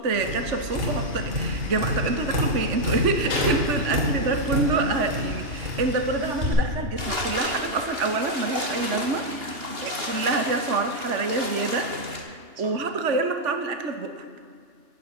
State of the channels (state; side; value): late; left; 2.8 ms